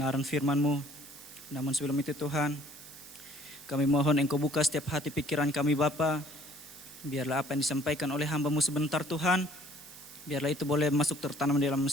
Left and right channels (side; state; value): right; noise; hiss, 17 dB below the sound